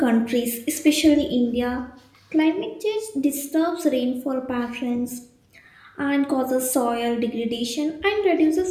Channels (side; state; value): both; identical; correlation 1.00